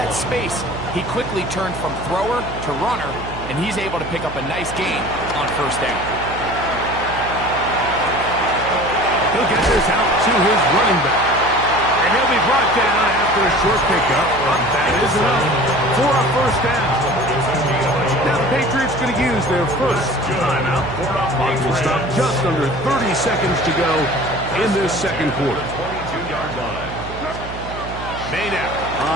space, he quickly turned from thrower to runner, and he's able to pick up a nice gain on first down. He'll get this out to his running back. And he'll be brought down after a short pickup, but that is enough for a first down. Now the Patriots going to use their first timeout. Clock will stop just under 30 seconds to go in this second quarter. 22-yard line. Made out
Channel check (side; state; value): right; noise; hum, 10 dB below the sound